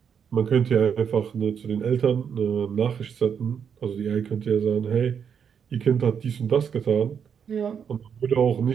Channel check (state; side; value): quieter; left; 7.4 dB